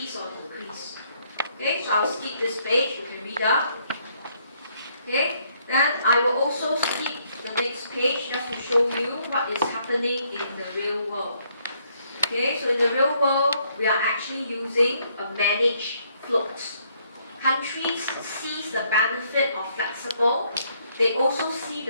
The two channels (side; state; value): both; inverted; correlation -0.70